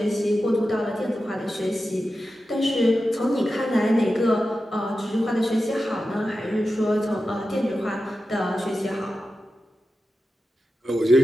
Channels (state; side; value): normal; both; correlation 0.92